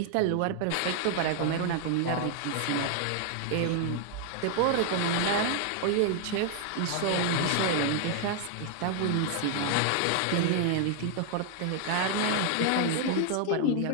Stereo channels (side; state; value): both; different; correlation 0.00